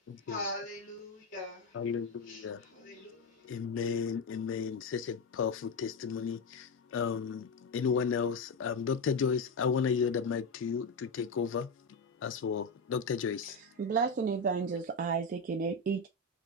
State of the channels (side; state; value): right; quieter; 3.1 dB